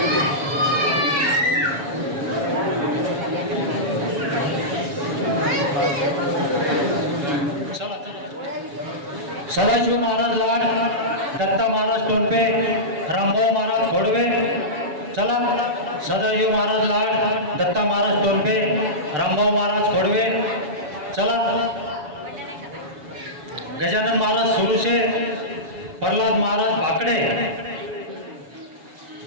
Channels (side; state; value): left; late; 7.1 ms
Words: सदाशिव महाराज लाड, दत्ता महाराज टोपे, रामभाऊ महाराज खोडवे. चला सदाशिव महाराज लाड, दत्ता महाराज टोपे, रामभाऊ महाराज खोडवे. चला गजानन महाराज सुरुशे, प्रल्हाद महाराज भाकडे,